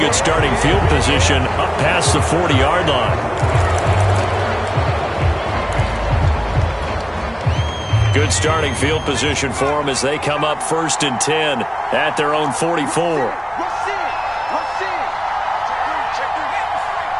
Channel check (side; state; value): both; identical; correlation 1.00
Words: starting field position up past the 40-yard line. Good starting field position for them as they come up 1st and 10 at their own 44.